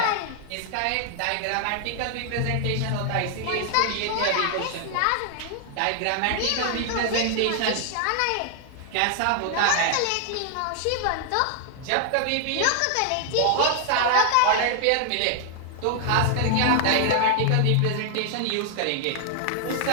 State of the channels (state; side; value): different; both; correlation 0.00